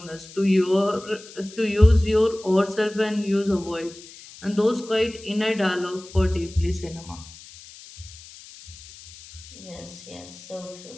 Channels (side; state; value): left; noise; hiss, 18 dB below the sound